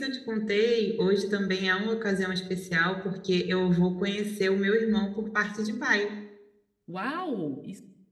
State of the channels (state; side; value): identical; both; correlation 1.00